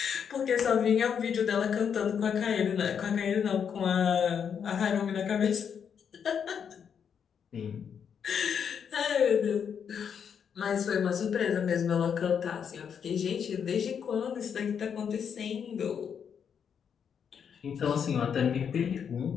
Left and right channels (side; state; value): right; quieter; 7.5 dB